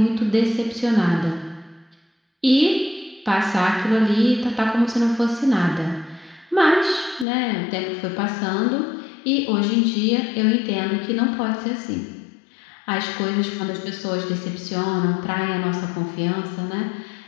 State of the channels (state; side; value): drops out; right; at 7.2 s